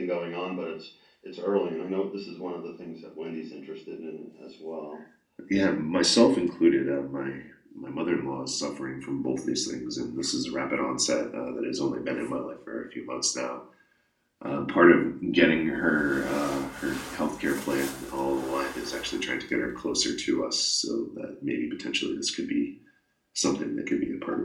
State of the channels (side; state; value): both; identical; correlation 1.00